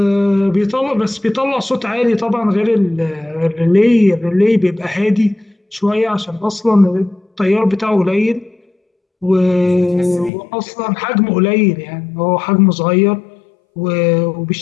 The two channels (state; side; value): drops out; right; at 10.3 s